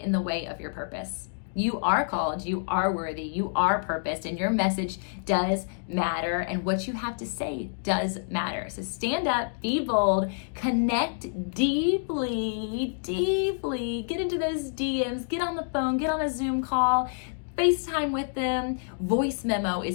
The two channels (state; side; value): silent; right; digital silence